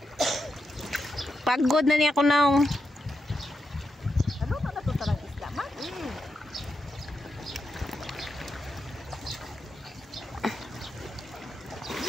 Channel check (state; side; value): normal; both; correlation 0.86